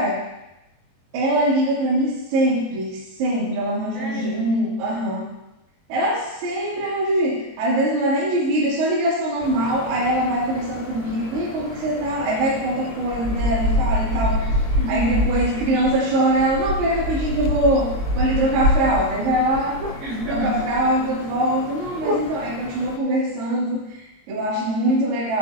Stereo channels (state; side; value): late; left; 22 ms